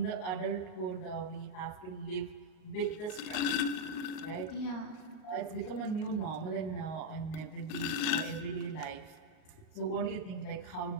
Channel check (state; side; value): late; right; 39 ms